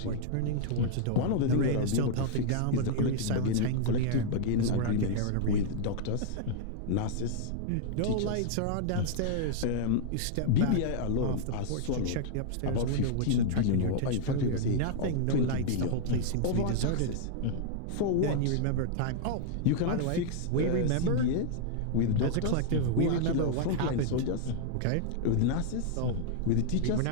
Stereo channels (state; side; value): different; both; correlation -0.01